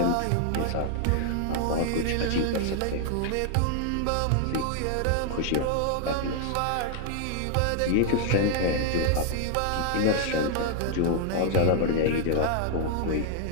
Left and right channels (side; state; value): both; different; correlation 0.00